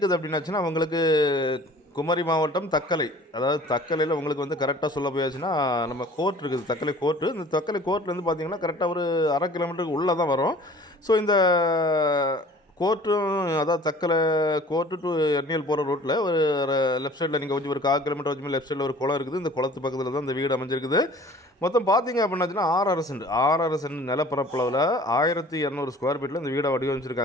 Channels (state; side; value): normal; both; correlation 0.48